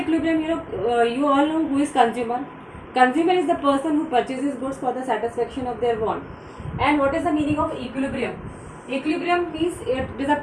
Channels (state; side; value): identical; both; correlation 1.00